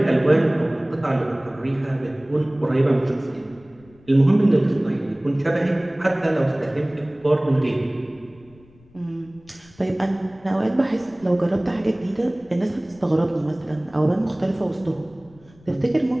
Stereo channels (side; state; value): left; noise; rumble, 27 dB below the sound